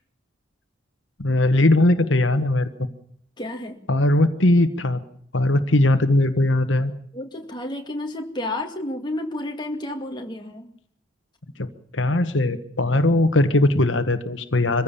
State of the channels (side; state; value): both; normal; correlation 0.66